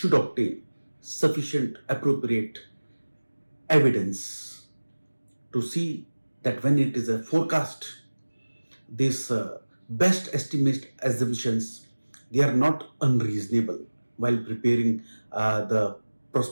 obtain sufficient appropriate evidence to see that when it is a forecast, these best estimate assumptions, they are not unreasonable while preparing the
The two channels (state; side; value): inverted; both; correlation -1.00